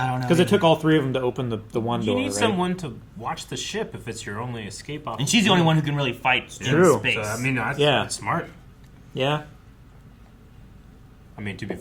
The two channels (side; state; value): both; identical; correlation 1.00